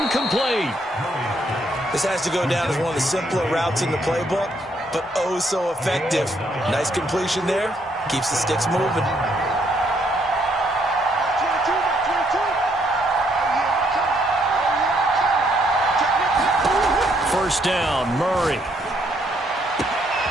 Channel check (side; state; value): both; normal; correlation 0.71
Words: complete. This has to go down as one of the simpler routes in the playbook, but oh so effective. Nice completion there. Keeps the sticks moving. 1st down, Murray.